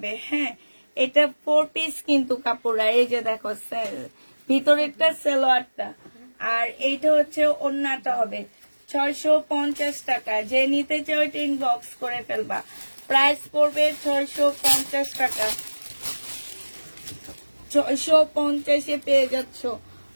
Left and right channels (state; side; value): inverted; both; correlation -1.00